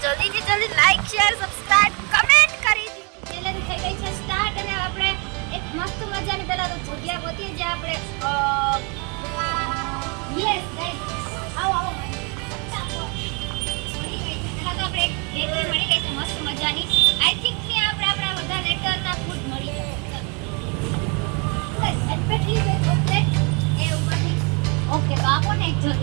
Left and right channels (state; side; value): quieter; left; 33.3 dB